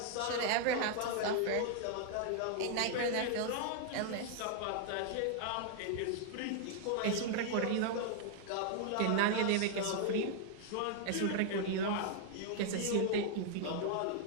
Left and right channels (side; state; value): both; different; correlation 0.00